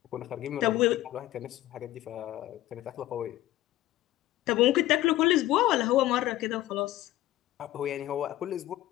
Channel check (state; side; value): quieter; right; 15.3 dB